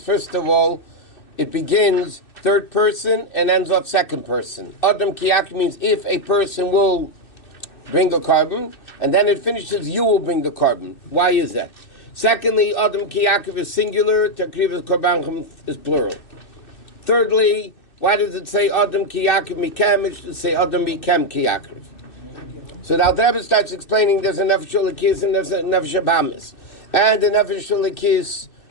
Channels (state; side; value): late; right; 2.6 ms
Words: of all, it begins third person and ends off second person. Adam Kiyakim means if a person will bring a carbon, and then it finishes, you will bring the carbon. Why is that? Secondly, Adam Kiyakim is singular, Takriv Korban is plural. Thirdly, why does it say Adam Ki Yaakov Mikem? It should say Adam Mikem Ki Yaakov. So now the Rabbi starts explaining there's a Nefesh Lakis and there's a Nefesh Habamis. And the Nefesh Lakis